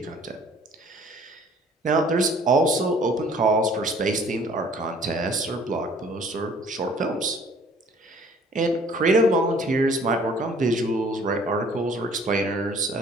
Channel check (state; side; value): normal; both; correlation 0.55